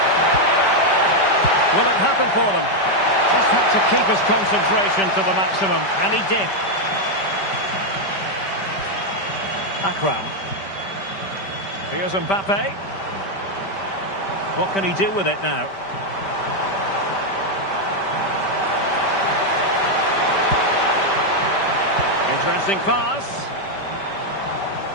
Will it happen for them? Just had to keep his concentration to the maximum, and he did. Akram. Here's Mbappe. What can he do with it now? Interesting pass.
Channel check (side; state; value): right; late; 5.1 ms